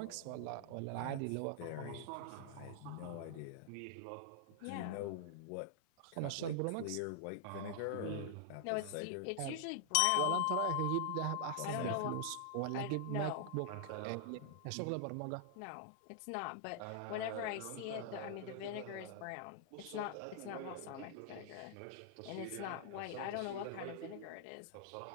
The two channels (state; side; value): different; both; correlation -0.01